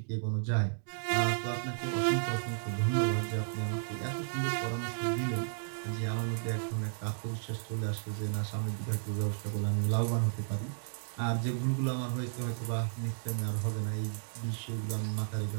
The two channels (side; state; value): left; silent; digital silence